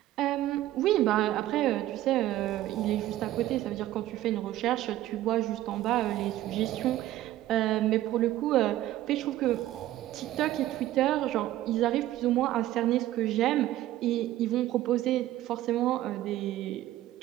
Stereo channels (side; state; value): left; quieter; 14.5 dB